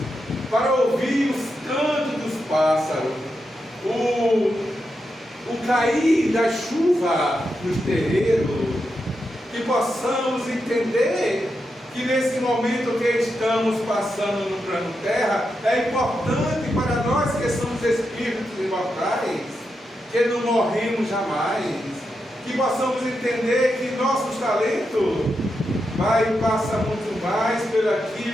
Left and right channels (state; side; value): normal; both; correlation 0.86